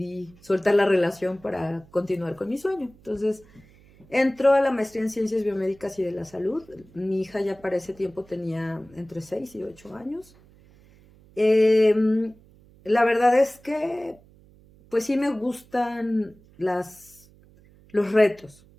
soltar la relación para continuar con mi sueño. Entonces entró a la maestría en Ciencias Biomédicas y de la Salud. Mi hija ya para ese tiempo tenía entre 6 y 8 años. La verdad es que pues sí me gustan los retos.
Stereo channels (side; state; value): right; noise; hum, 27 dB below the sound